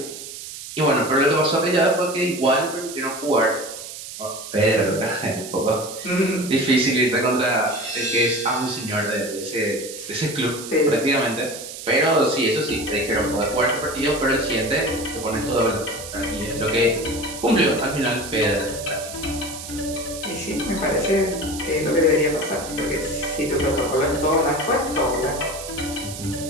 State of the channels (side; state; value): right; noise; hiss, 11 dB below the sound